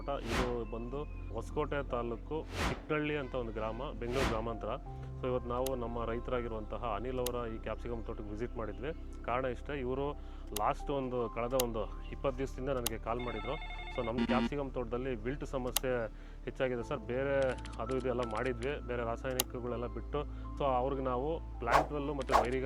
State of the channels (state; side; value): identical; both; correlation 1.00